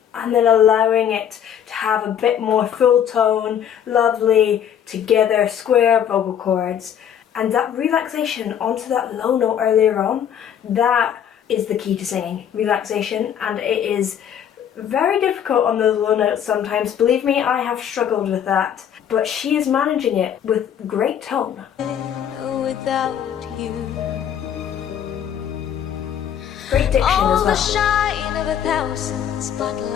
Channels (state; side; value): quieter; right; 9.2 dB